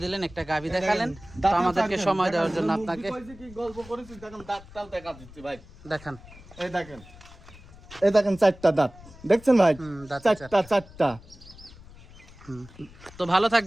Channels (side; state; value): left; noise; rumble, 20 dB below the sound